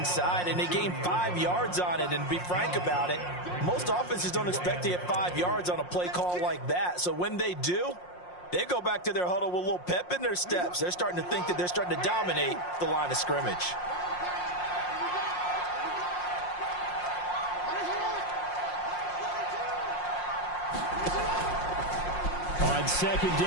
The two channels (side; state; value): right; late; 5.6 ms